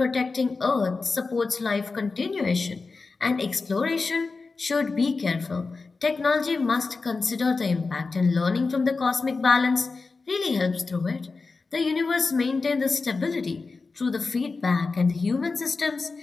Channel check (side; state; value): right; quieter; 4.1 dB